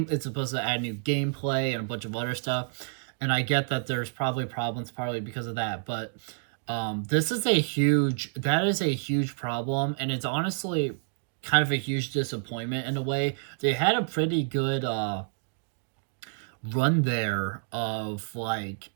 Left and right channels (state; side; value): silent; left; digital silence